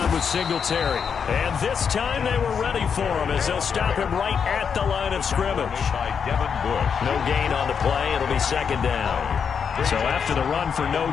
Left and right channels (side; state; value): right; quieter; 6.7 dB